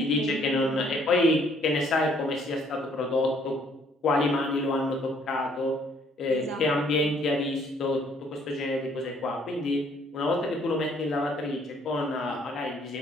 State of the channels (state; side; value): normal; both; correlation 0.63